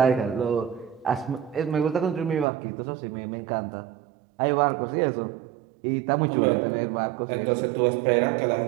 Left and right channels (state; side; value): drops out; left; at 2.5 s